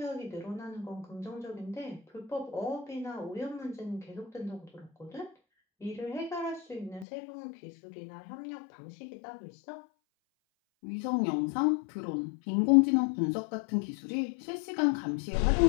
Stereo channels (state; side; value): drops out; right; at 7.1 s